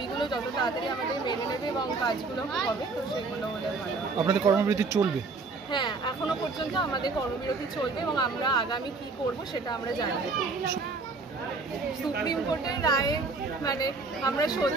যত তাড়াতাড়ি আমাদের মেনে নেবে এবং কাজগুলো হবে, তো সেগুলো হলে ভালো। আপনাদের কর্মবিরতি চলবে? হ্যাঁ, এখনো পর্যন্ত আমাদের কর্মবিরতি চলবে এবং আমরা আগামী কি করব সেটা আমরা জানি। সুপ্রিম কোর্টের রায়ে মানে আমরা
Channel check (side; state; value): left; quieter; 4.0 dB